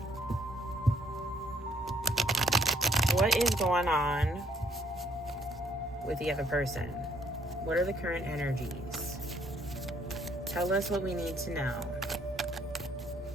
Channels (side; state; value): both; normal; correlation 0.65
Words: What is going on with the other person? What are the current energies? Tell us what we need to know.